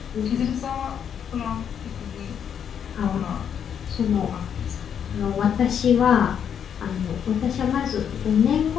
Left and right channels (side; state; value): right; quieter; 8.2 dB